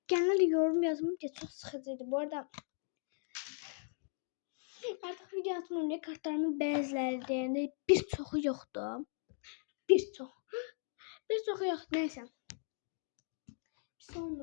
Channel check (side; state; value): right; silent; digital silence